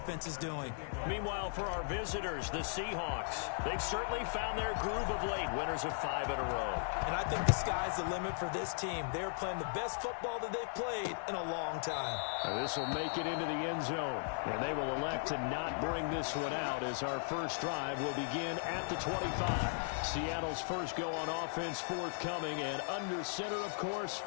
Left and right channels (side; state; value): right; silent; 53 dB below the other